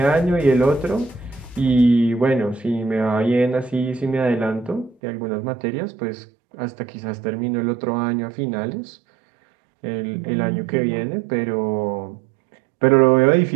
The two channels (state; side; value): drops out; left; at 5.0 s